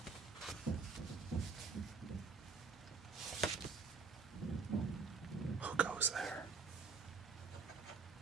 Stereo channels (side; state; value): left; quieter; 4.9 dB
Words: Who goes there?